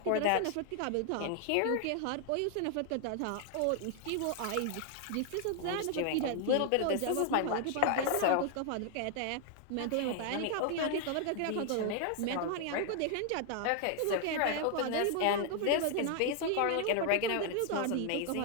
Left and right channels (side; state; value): both; different; correlation 0.00